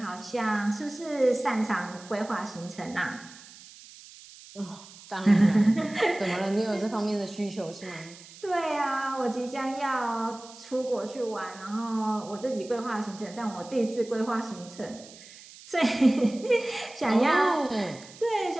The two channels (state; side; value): noise; right; hiss, 19 dB below the sound